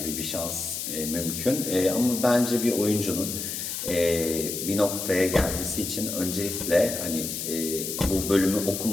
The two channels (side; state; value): left; noise; hiss, 4 dB below the sound